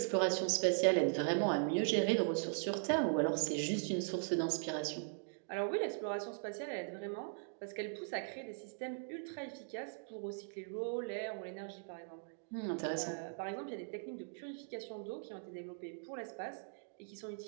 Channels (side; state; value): left; silent; digital silence